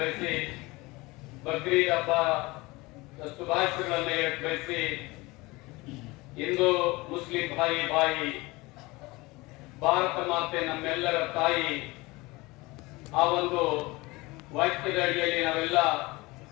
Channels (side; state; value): right; quieter; 22.7 dB